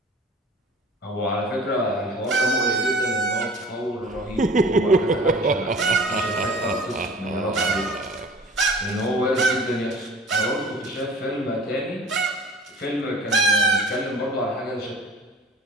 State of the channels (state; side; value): normal; both; correlation 0.44